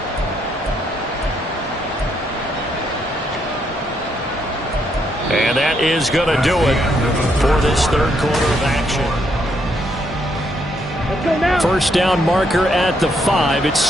And that is going to do it for this third quarter of action. Let's go now. First down marker at the 5.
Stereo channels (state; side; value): normal; both; correlation 0.74